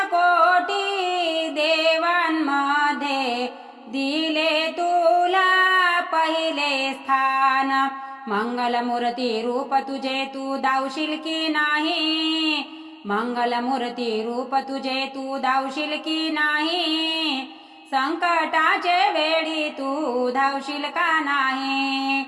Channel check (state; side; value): identical; both; correlation 1.00